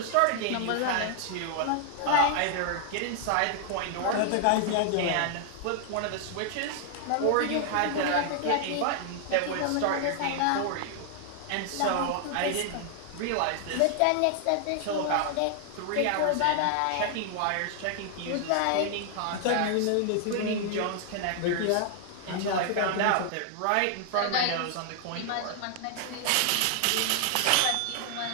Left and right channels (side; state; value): both; different; correlation 0.00